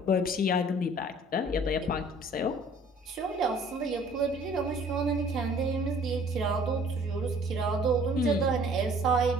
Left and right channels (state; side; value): normal; both; correlation 0.54